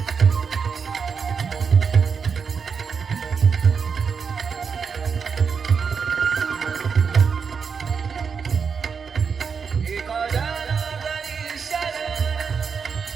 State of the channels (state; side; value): quieter; left; 6.0 dB